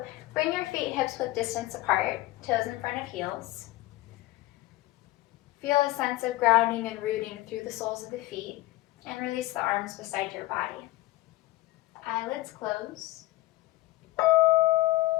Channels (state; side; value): quieter; right; 17.6 dB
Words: bring your feet hips width distance apart, toes in front of heels. Feel a sense of grounding and rooting through the soles of the feet, and release the arms beside your body. Eyelids close.